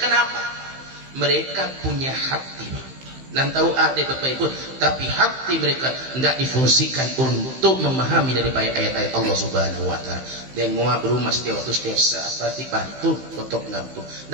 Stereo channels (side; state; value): left; late; 15 ms